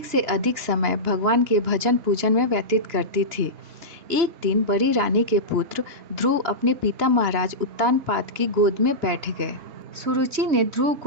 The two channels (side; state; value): left; late; 2.9 ms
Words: से अधिक समय भगवान के भजन पूजन में व्यतीत करती थी। एक दिन बड़ी रानी के पुत्र ध्रुव अपने पिता महाराज उत्तानपाद की गोद में बैठ गए। सुरुचि ने ध्रुव